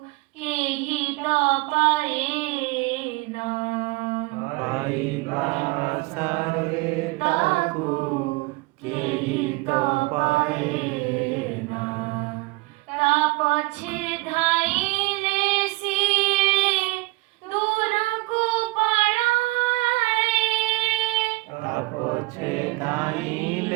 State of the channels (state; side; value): quieter; left; 23.3 dB